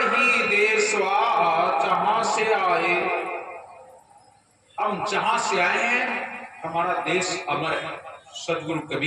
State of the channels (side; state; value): both; identical; correlation 1.00